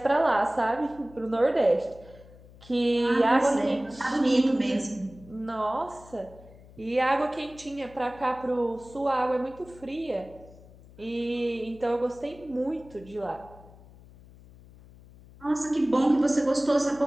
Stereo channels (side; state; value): left; noise; hum, 22 dB below the sound